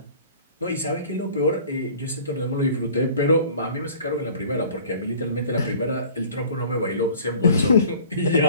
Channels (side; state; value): both; inverted; correlation -0.48